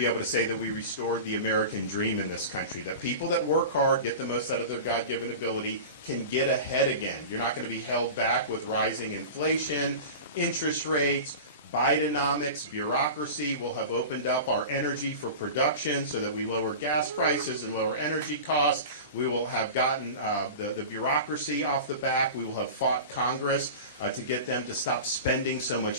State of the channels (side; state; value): both; inverted; correlation -0.32